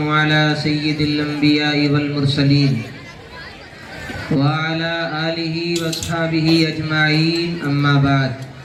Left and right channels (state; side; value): identical; both; correlation 1.00